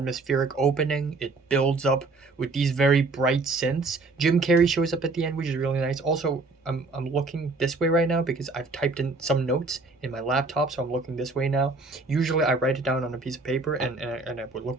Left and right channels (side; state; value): left; quieter; 3.6 dB